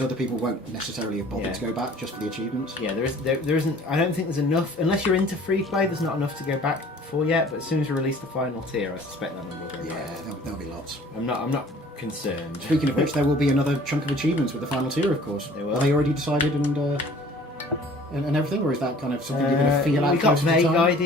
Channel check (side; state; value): both; normal; correlation 0.51